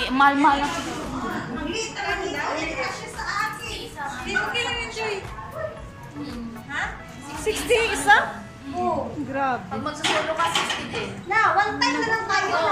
mahal-mahal lang. Ha? 60 isa? Oo. Grabe. Pag magsasolo ka, 60 din. Na, one time na lang tayo.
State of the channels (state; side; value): identical; both; correlation 1.00